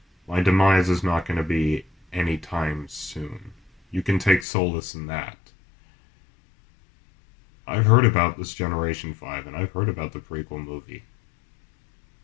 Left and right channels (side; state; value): right; drops out; at 4.5 s